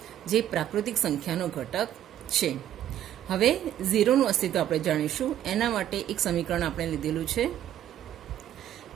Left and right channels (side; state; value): left; quieter; 11.4 dB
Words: જે પ્રાકૃતિક સંખ્યાનો ઘટક છે. હવે 0નું અસ્તિત્વ આપણે જાણીશું. એના માટે એક સમીકરણ આપણે લીધેલું છે,